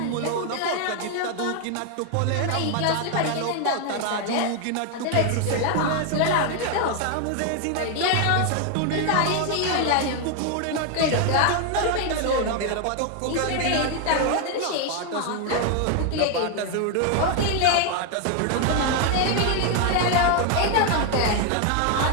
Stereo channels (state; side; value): different; both; correlation 0.01